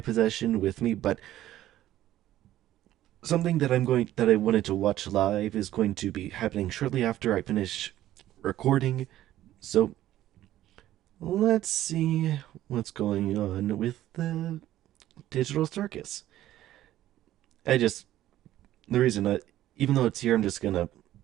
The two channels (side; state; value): left; quieter; 13.6 dB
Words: possession with me, but something that I wanted to watch live is going to be happening shortly after I finish recording. So let's see what's going on with the Digital Circus. I just the reason that even though it's here, I'm just gonna